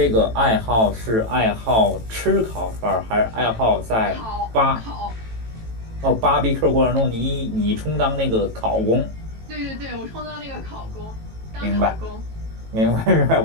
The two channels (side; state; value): left; late; 18 ms